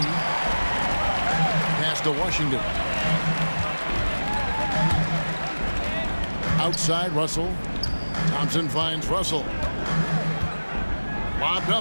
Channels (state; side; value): inverted; both; correlation -1.00